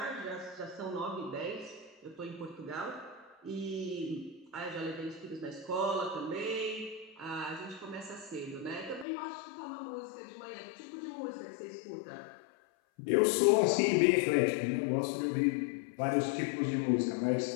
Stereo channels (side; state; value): right; drops out; at 9.1 s